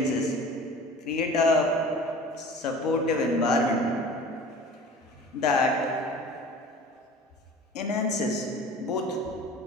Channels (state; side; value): normal; both; correlation 0.42